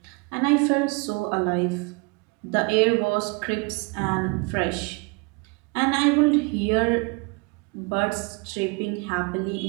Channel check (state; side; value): quieter; left; 30.2 dB